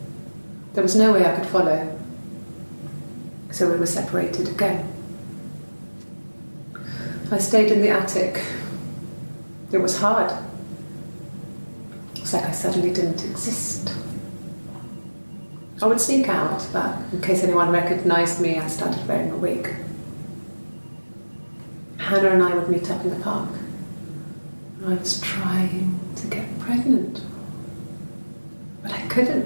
There was no way I could follow, so we were separated again. I stayed in the attic. It was hard. It's like I suddenly didn't exist. I would sneak out, but in case anyone recognised me, I started wearing a wig. Hannah and I would meet up in the park. I was trying to get pregnant. But I couldn't.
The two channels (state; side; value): inverted; both; correlation -1.00